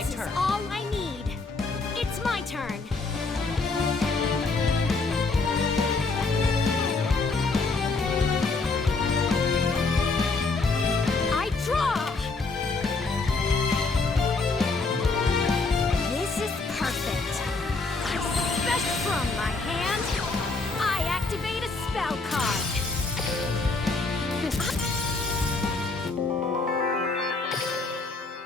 turn. Is all I need. It's my turn. spell card.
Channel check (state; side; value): quieter; right; 3.8 dB